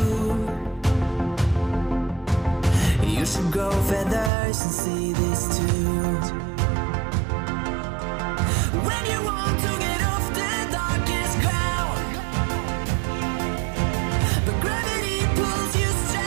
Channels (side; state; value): left; drops out; at 4.3 s